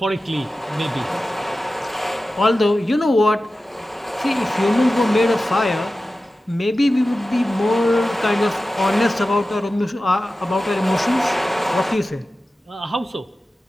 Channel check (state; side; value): normal; both; correlation 0.94